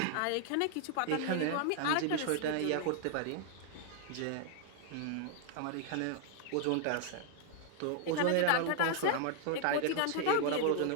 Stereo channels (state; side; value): different; both; correlation 0.00